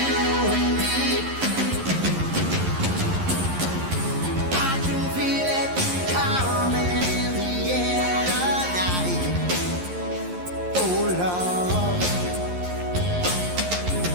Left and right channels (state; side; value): late; left; 11 ms